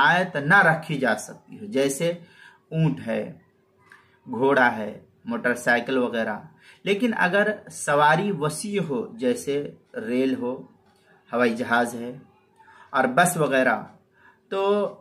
نہ رکھی جا سکتی ہو، جیسے اونٹ ہے، گھوڑا ہے، موٹر سائیکل وغیرہ۔ لیکن اگر سواری وسیع ہو جیسے ریل ہو، ہوائی جہاز ہے اور بس وغیرہ، تو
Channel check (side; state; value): both; identical; correlation 1.00